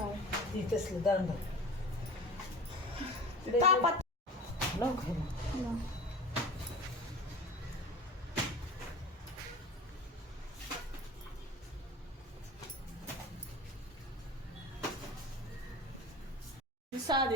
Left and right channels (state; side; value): normal; both; correlation 0.36